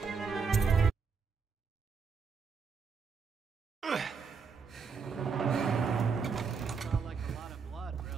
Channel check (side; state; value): left; quieter; 5.5 dB